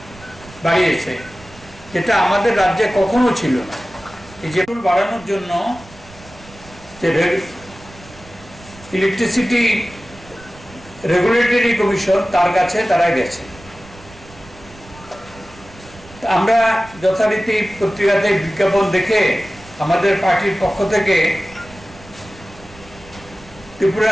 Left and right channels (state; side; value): noise; right; rumble, 21 dB below the sound